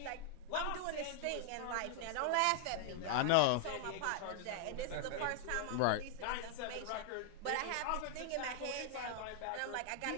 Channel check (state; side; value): different; both; correlation 0.00